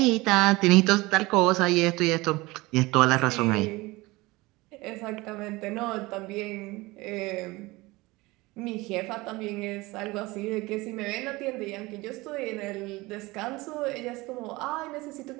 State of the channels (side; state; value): left; quieter; 21.6 dB